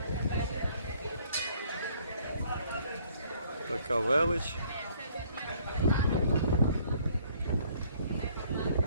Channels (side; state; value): both; inverted; correlation -0.61